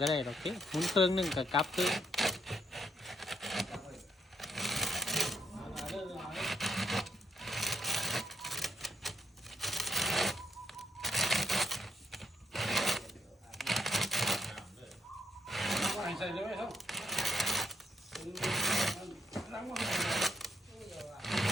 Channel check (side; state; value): both; normal; correlation 0.75